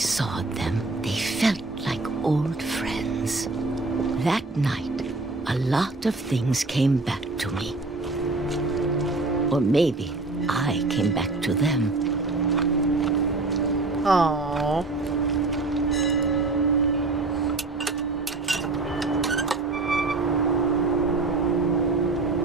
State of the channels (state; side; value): quieter; left; 3.4 dB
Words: them, they felt like old friends. That night, a lot of things came back to me. Or maybe I came back to them. Aww.